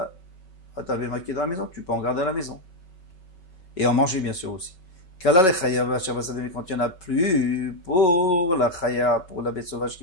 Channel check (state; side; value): late; right; 5.3 ms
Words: béma qui est dans la maison, tu peux en garder à la maison. Et en manger bien sûr aussi. Kala le chaya mais quand il n'y en a plus, pour la chaya, pour la bête sauvage